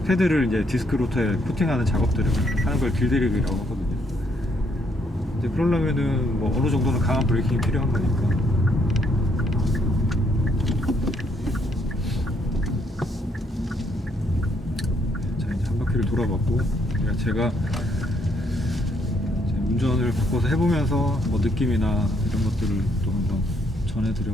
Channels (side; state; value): both; normal; correlation 0.71